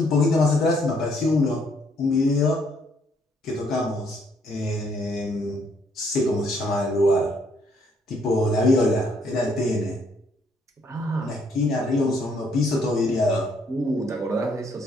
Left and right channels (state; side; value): normal; both; correlation 0.68